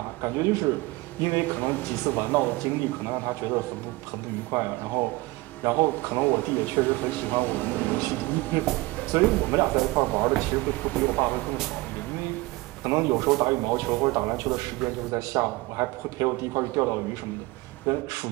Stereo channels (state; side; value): quieter; left; 21.8 dB